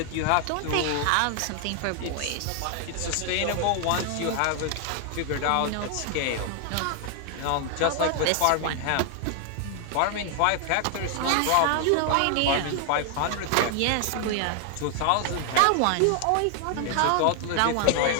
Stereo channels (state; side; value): different; both; correlation 0.00